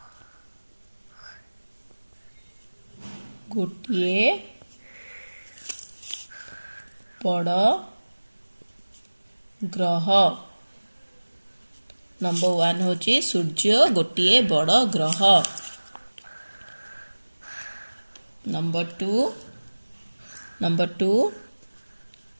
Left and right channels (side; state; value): both; inverted; correlation -1.00